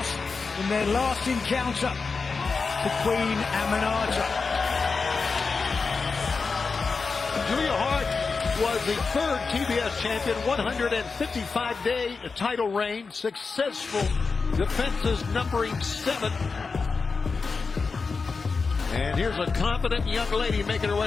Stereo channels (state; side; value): quieter; right; 4.6 dB